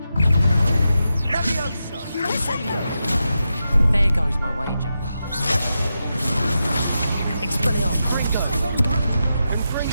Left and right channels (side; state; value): both; inverted; correlation -0.88